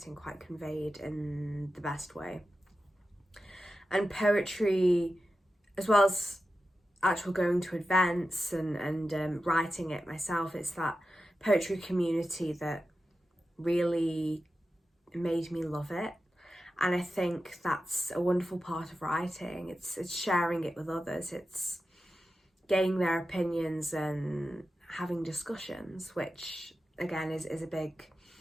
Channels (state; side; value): normal; both; correlation 0.92